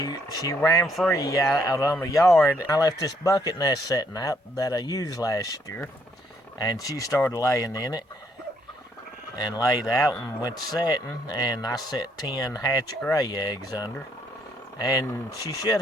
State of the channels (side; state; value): both; normal; correlation 0.70